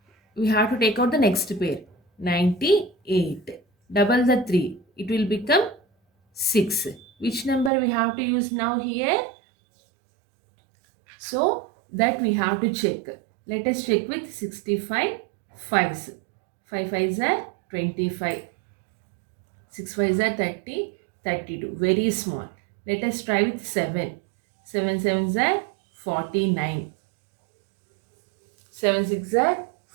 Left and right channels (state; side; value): drops out; left; at 7.7 s